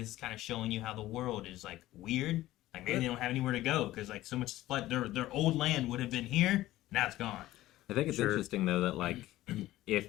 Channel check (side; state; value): right; quieter; 15.8 dB